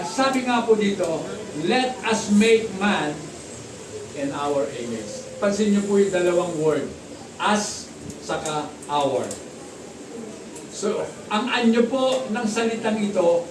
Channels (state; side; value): identical; both; correlation 1.00